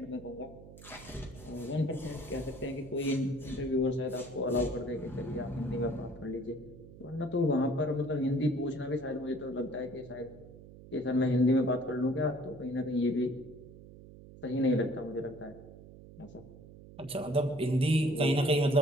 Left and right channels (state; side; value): noise; right; hum, 18 dB below the sound